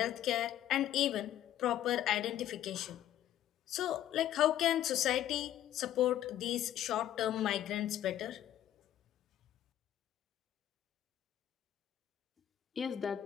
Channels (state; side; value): quieter; right; 11.9 dB